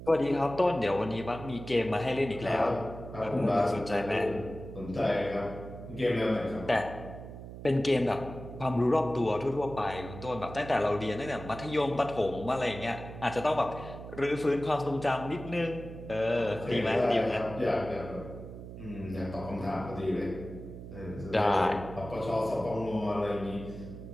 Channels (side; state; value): right; noise; hum, 12 dB below the sound